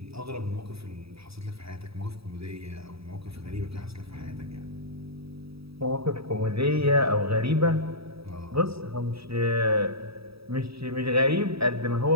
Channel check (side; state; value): left; late; 0.77 ms